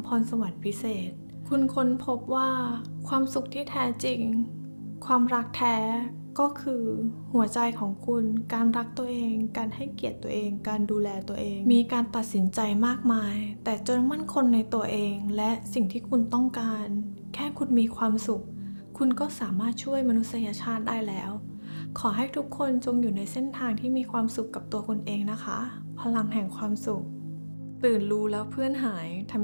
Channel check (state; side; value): inverted; both; correlation -1.00